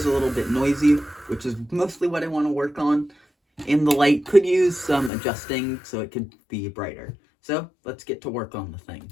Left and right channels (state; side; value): drops out; right; at 5.1 s